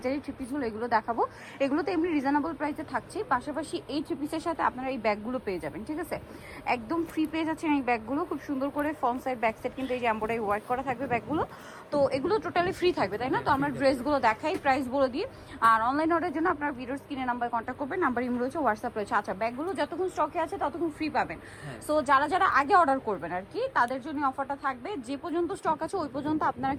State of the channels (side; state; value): both; identical; correlation 1.00